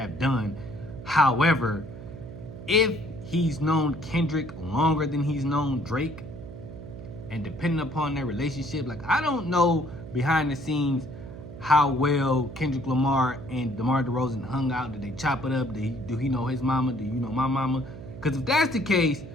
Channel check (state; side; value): noise; right; hum, 13 dB below the sound